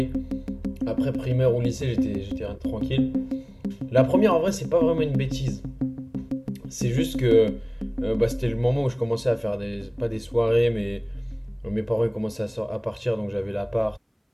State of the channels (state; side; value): identical; both; correlation 1.00